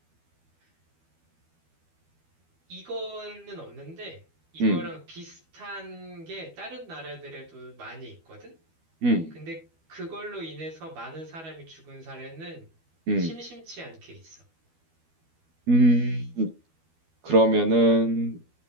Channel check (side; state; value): left; late; 12 ms